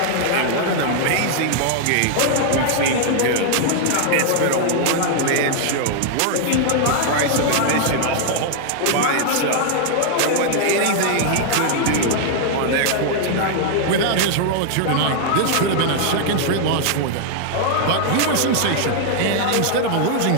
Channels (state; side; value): different; both; correlation 0.00